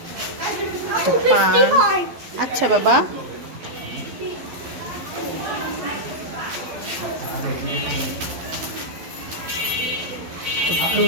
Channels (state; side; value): late; left; 12 ms